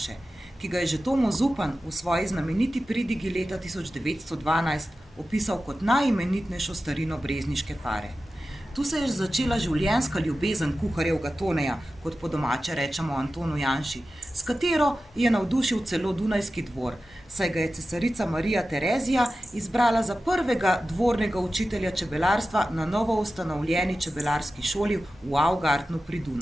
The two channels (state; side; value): normal; both; correlation 0.94